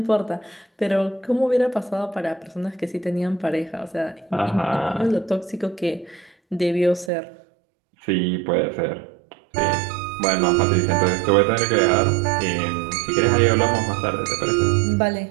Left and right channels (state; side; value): drops out; left; at 7.1 s